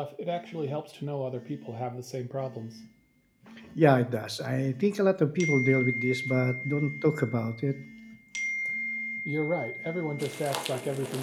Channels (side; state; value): both; identical; correlation 1.00